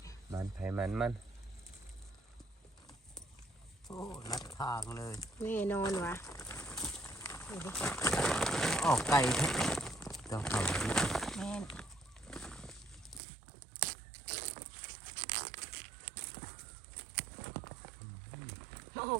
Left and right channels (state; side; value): drops out; left; at 13.2 s